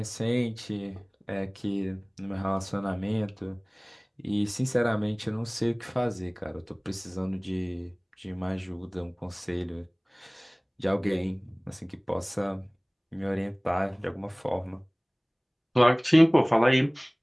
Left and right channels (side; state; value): both; identical; correlation 1.00